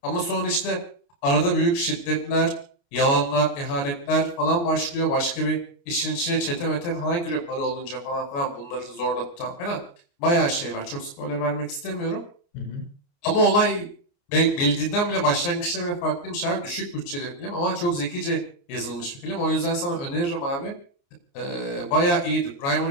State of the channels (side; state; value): right; late; 29 ms